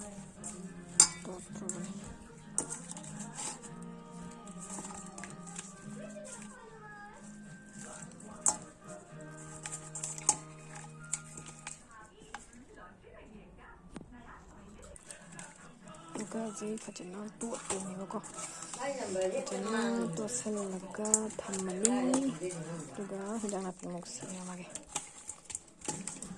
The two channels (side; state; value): both; identical; correlation 1.00